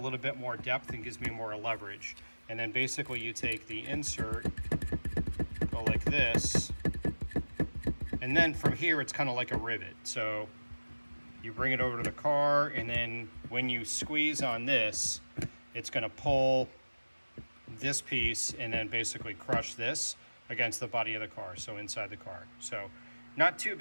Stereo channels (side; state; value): both; inverted; correlation -1.00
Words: bit more depth and gives me more leverage. And then basically you take the insert, go like this, and then from here it's kind of like a rivet. So you bring it over to the car, and then when you squeeze on this, it's going to pull this piece and then basically crush this against the body of the car, so inside the car. So not too